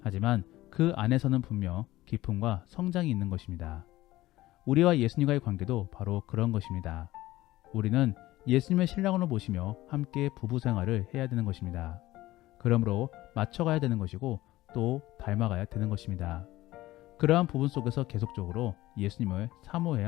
하지만 그 안에서는 분명 기쁨과 성장이 있는 것입니다. 우리와 예수님과의 관계도 바로 그런 것입니다. 우리는 예수님의 신랑으로 모시며 함께 부부 생활을 해야 되는 것입니다. 그러므로 맞춰가야 되는 것이고 또 닮아가야 되는 것입니다. 그러한 부분 속에서 계속적으로 예수님을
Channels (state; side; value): quieter; right; 16.9 dB